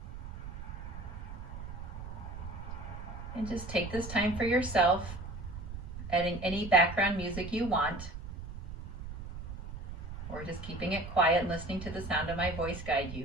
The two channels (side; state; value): right; noise; rumble, 9 dB below the sound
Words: And just take this time for yourself, adding any background music you want, or just keeping it quiet and listening to the sound of my voice guide you.